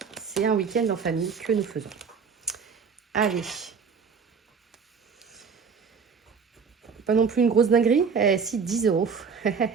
c'est un week-end en famille que nous faisons. Allez. Pas non plus une grosse dinguerie. Si, 10 euros.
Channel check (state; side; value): quieter; left; 5.9 dB